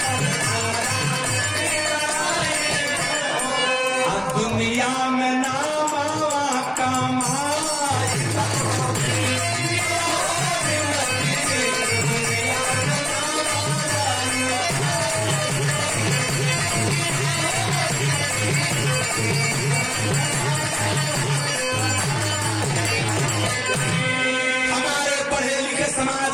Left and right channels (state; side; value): identical; both; correlation 1.00